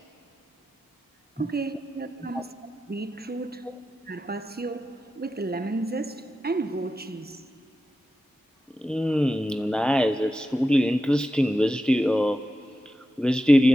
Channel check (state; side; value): normal; both; correlation 0.91